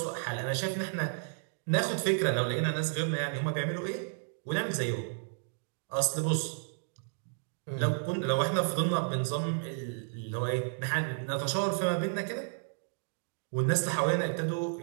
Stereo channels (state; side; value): silent; left; digital silence